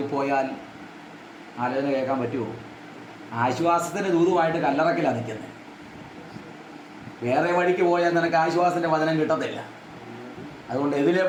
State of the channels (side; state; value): both; identical; correlation 1.00